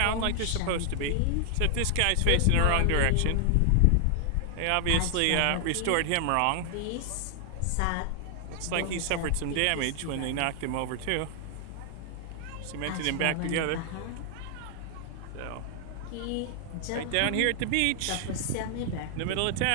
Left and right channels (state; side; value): different; both; correlation 0.00